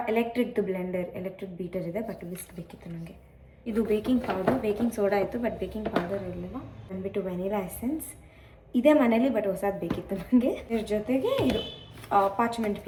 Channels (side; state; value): both; identical; correlation 1.00